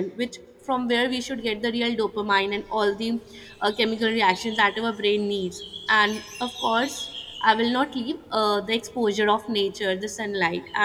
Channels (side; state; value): both; identical; correlation 1.00